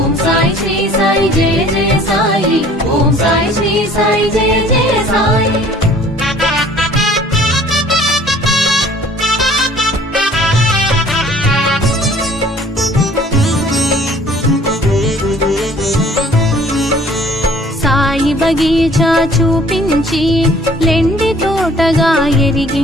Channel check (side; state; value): both; normal; correlation 0.54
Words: साई श्री साई जय जय साई ओम साई श्री साई जय जय साई సాయి బగీచా చూపించి లెండి తోటగా